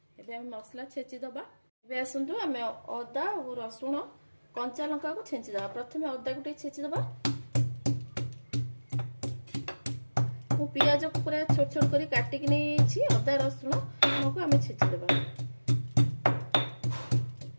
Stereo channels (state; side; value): inverted; both; correlation -1.00